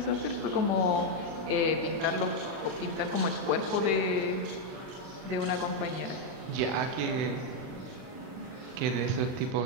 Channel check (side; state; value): left; late; 39 ms